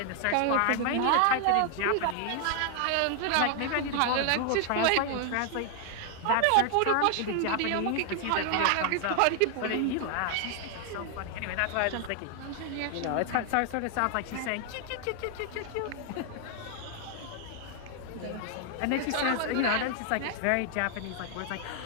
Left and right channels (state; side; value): different; both; correlation 0.00